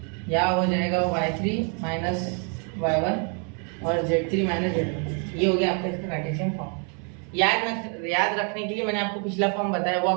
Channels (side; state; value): left; quieter; 39.9 dB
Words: यहाँ हो जाएगा y3 माइनस y1 और z3 माइनस z1। ये हो गया आपका इसका कार्टेशियन फॉर्म। याद रखने के लिए मैंने आपको पिछला फॉर्म बताया, वो